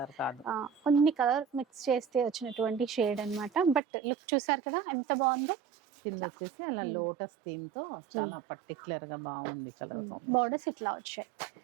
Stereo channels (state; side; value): drops out; left; at 3.8 s